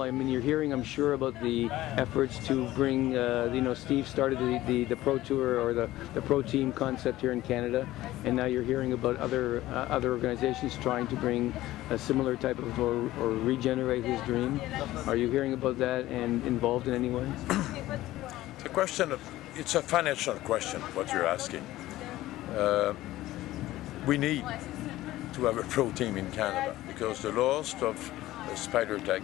You're hearing, I'm sure, about the efforts to bring, Steve started the Pro Tour or the Pro Team concept here in Canada, and now you're hearing about other organizations trying to bring a similar type of, or regenerate his dream. Are you hearing about that and involved in any way? The question, it's a financial question, what you're asking. We need to have a pro team in Canada, because the loss of Spider Tech,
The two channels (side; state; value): right; quieter; 16.0 dB